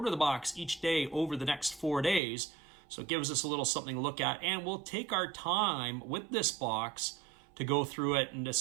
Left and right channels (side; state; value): left; drops out; at 2.2 s